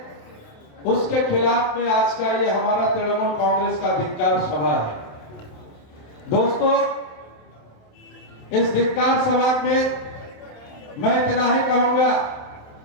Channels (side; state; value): right; late; 28 ms